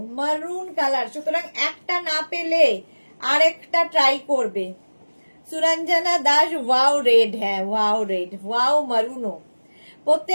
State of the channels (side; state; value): both; inverted; correlation -1.00